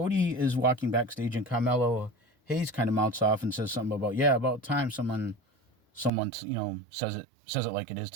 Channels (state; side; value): drops out; left; at 6.1 s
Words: is walking backstage, and Carmelo Hayes kind of mouths off and says something about time someone says it like it is